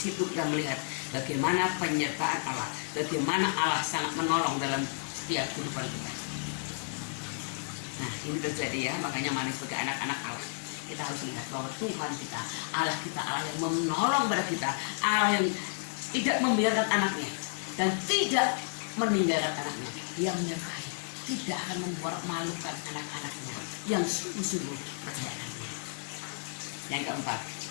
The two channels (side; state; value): right; silent; digital silence